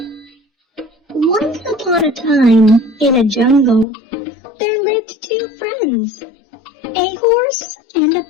Once upon a time, in a jungle, there lived two friends, a horse and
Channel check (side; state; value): right; drops out; at 3.9 s